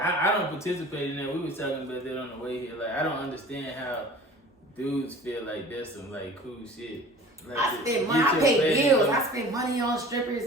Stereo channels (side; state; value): both; normal; correlation 0.43